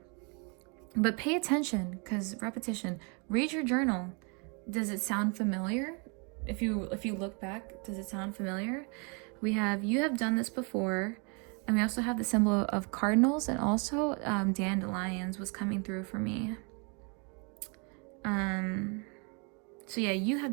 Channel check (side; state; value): left; quieter; 34.4 dB